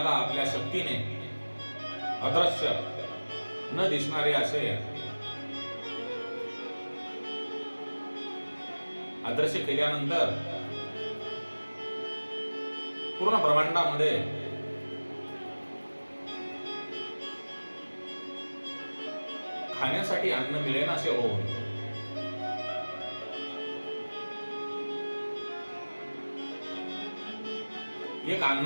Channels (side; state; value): both; inverted; correlation -1.00